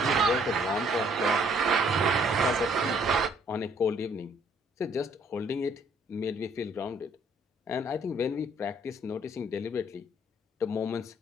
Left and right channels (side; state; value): both; normal; correlation 0.63